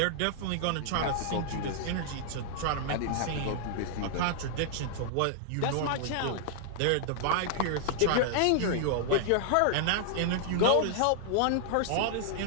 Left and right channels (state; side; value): different; both; correlation -0.01